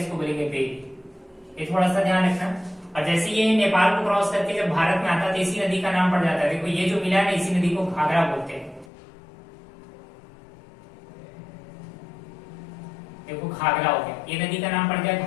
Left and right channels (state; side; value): drops out; right; at 8.9 s